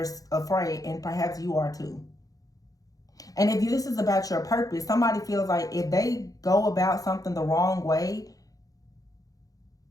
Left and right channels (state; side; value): late; right; 0.17 ms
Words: afraid, and perhaps you are too. And if this is about your purpose, somebody feels like if they go about something the wrong way